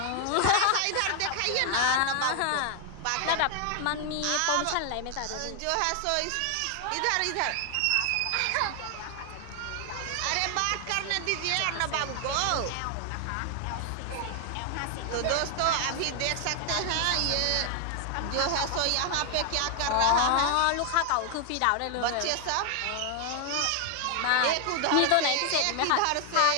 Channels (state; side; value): different; both; correlation 0.00